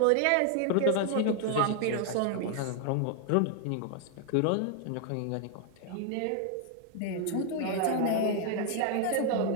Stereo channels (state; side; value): different; both; correlation 0.00